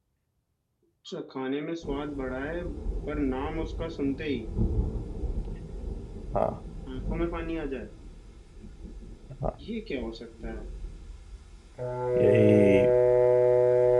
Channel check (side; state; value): both; identical; correlation 1.00